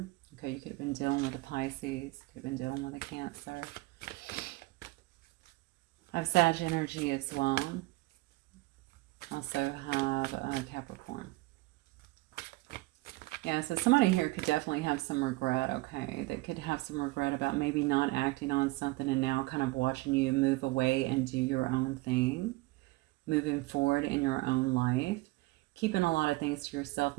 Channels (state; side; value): quieter; left; 21.4 dB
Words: Okay, you could have been dealing with a Pisces. Could have been dealing with a Cancer. I have Sag energy as well. Also have a Capricorn. Yeah, so somebody here could definitely have some regret, okay? They could have some regret about maybe not acting on something and now kind of watching you move away and do your own thing. Moving forward in your own life, keeping a lot of things to yourself,